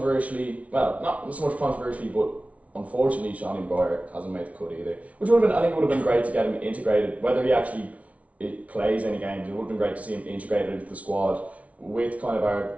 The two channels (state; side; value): late; left; 0.066 ms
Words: well, not so much controversially, but unfortunately, Seanie Maguire hasn't made the cut either. Which would have been, I think, it would have been great to get him integrated. Whether he actually plays any games, it would have been great to see him integrated into the squad with kind of our